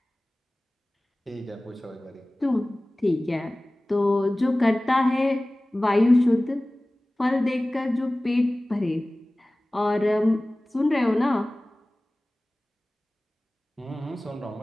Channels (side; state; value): both; normal; correlation 0.98